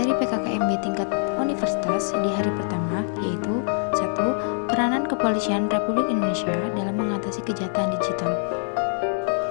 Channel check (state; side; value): silent; right; digital silence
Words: PKKMB tingkat universitas di hari pertama yaitu 1. Peranan Kepolisian Republik Indonesia dalam mengatasi kejahatan digital,